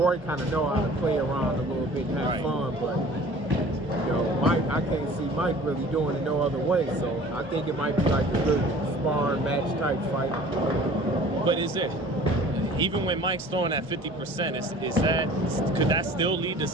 kind of know how to play around a little bit and have fun, but you know, Mike, I can't see Mike really doing it no other way. So I think it might be like a good sparring match type fight. But is it, even when Mike's throwing at 50%, could that still lead to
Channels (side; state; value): both; normal; correlation 0.47